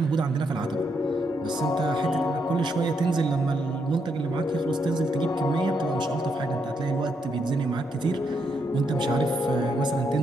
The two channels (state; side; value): normal; both; correlation 0.78